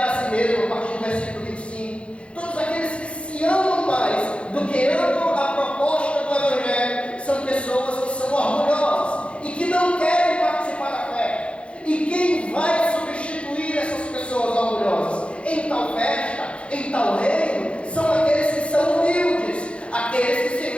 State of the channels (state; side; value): late; right; 0.060 ms